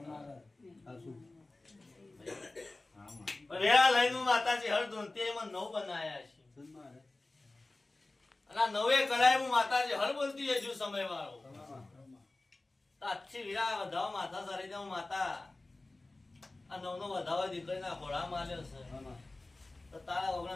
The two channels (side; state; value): right; quieter; 3.0 dB